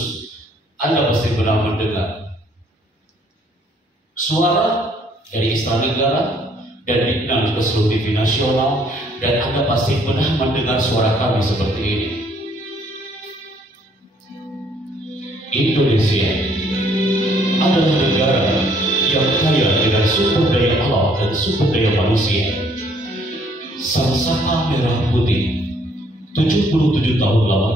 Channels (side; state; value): both; normal; correlation 0.64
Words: Anda pasti pernah mendengar suara dari Istana Negara dan dikenal ke seluruh TV nasional, dan Anda pasti pernah mendengar suara kami seperti ini. Indonesia adalah negara yang kaya dengan sumber daya alam dan sumber daya manusia. Sangsaka merah putih 77 tahun